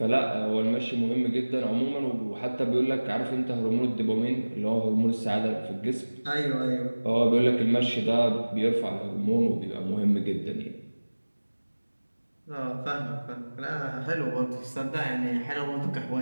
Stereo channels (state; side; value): inverted; both; correlation -1.00